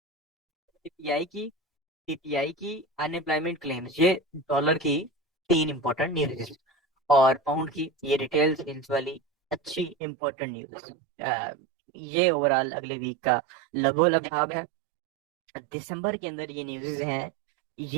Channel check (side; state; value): left; drops out; at 10.0 s